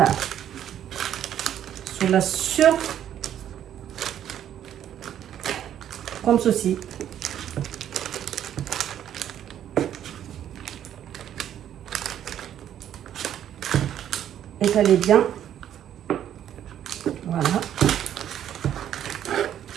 Sur la comme ceci. Étalez bien. Voilà.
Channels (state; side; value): quieter; left; 10.5 dB